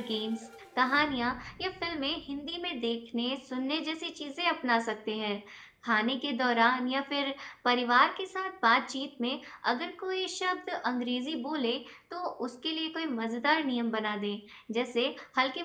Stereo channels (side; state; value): both; identical; correlation 1.00